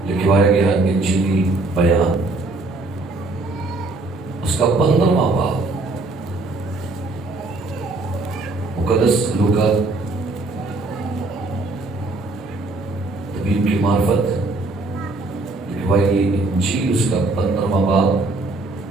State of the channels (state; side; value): quieter; left; 3.0 dB